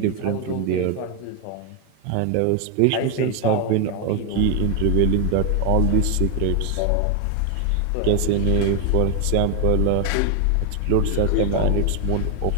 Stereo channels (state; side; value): different; both; correlation 0.00